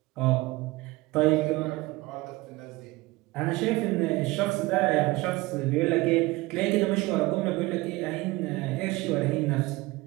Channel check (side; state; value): left; quieter; 21.3 dB